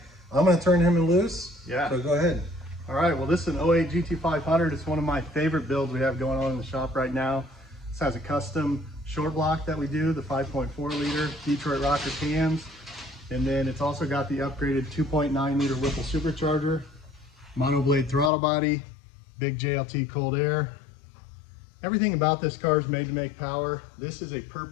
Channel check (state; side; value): drops out; right; at 18.3 s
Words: I'm going to turn him loose. Yeah. So go ahead. All right, well, this is an 08 GT500. It's one of my favorite builds we have going on in the shop right now. This has a custom short block that we do, the 5.4 liter Detroit rocker cams. And then it's also got the upgraded 2.9 liter Whipple supercharger, monoblade throttle body, big JLT cold air. Everything about this car is made to make power. This is a